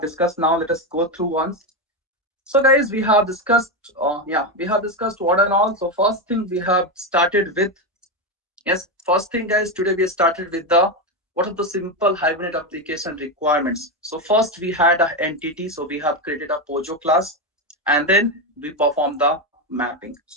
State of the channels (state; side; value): normal; both; correlation 0.10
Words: discussed now. Let us go through once. So guys, we have discussed, we have discussed what and all. So first thing we have started with, yes, first thing, guys, today we started with the what are the simple Hibernate application requirements. So first we had an entity, so we have created a Pojo class, and then we perform the mapping.